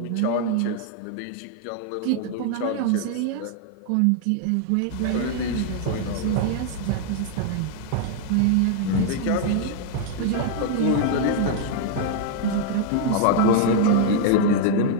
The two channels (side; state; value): both; different; correlation 0.00